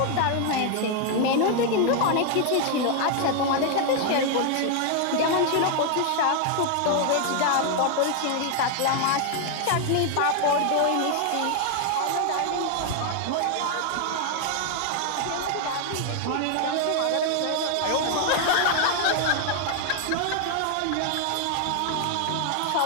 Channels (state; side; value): different; both; correlation 0.00